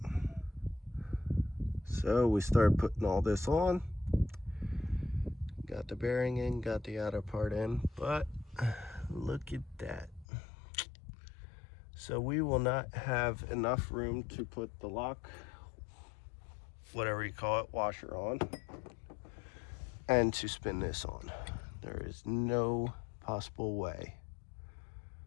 So we start putting all this on. Got the bearing in, got the outer part in, but look at that. So we will not have enough room to put the lock, whatever you call it, washer on, and to spin this on. There is no possible way.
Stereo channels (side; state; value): right; drops out; at 10.2 s